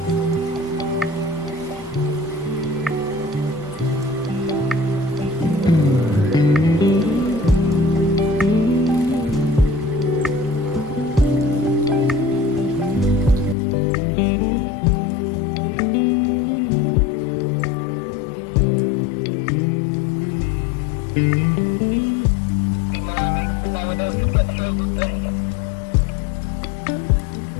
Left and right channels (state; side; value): drops out; right; at 13.6 s